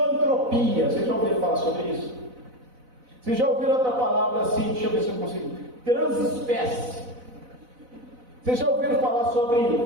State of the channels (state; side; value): late; left; 4.0 ms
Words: vocês já ouviram falar sobre isso? Vocês já ouviram outra palavra assim, deixa eu ver se eu consigo, transespécie? Vocês já ouviram falar